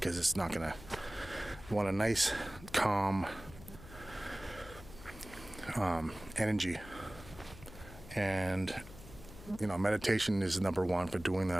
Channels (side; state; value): left; noise; hum, 16 dB below the sound